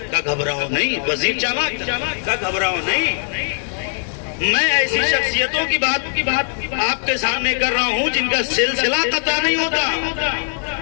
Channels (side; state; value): right; silent; 66 dB below the other